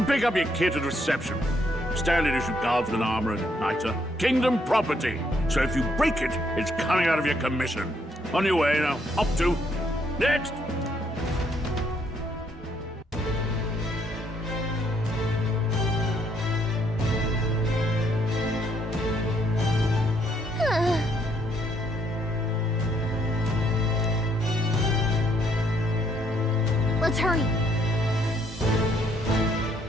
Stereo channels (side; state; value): both; normal; correlation 0.71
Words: pick up your kit at reception. Standard issue guardsman armor and igniter. Kingdom property. So if you break it, it's coming out of your commission. On your way now. Up to. Next! Let's hurry.